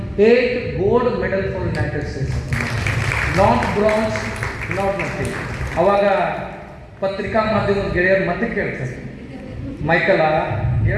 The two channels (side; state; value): both; identical; correlation 1.00